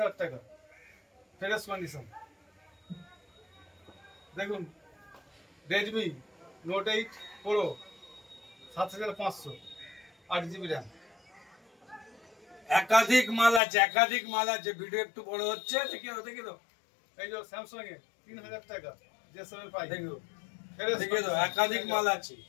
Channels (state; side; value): drops out; right; at 13.6 s